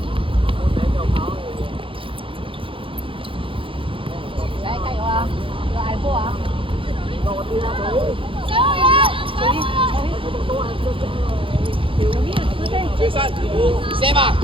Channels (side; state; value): left; late; 0.25 ms